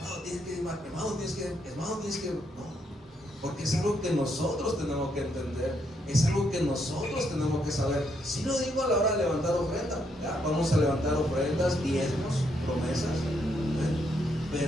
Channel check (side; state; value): both; normal; correlation 0.75